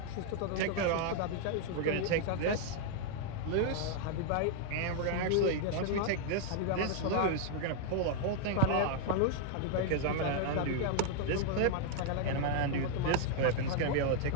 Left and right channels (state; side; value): different; both; correlation 0.00